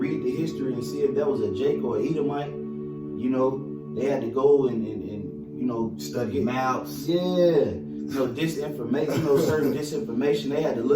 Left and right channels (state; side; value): identical; both; correlation 1.00